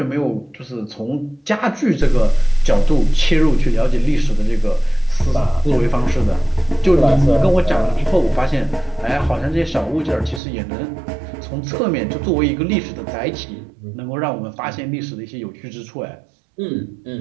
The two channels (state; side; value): drops out; left; at 10.4 s